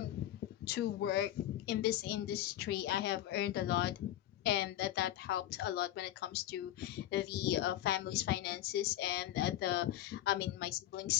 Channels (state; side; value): quieter; right; 13.2 dB